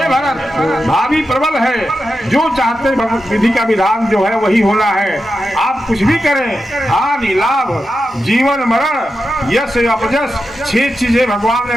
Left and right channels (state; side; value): normal; both; correlation 0.90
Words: भरत, भाभी प्रबल है, जो चाहते विधि का विधान जो है वही होना है। आप कुछ भी करें, हानि लाभ जीवन मरण यश अपयश 6 चीजें भगवान ने